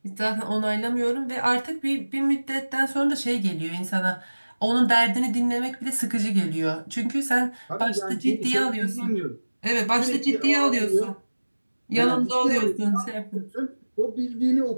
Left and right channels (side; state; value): both; inverted; correlation -1.00